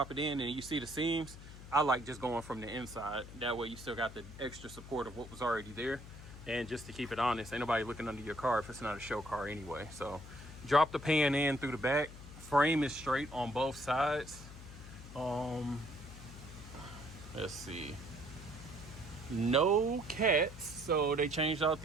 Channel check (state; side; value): noise; left; hum, 15 dB below the sound